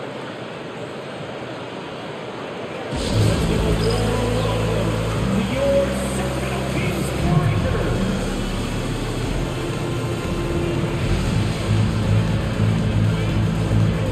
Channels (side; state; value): both; identical; correlation 1.00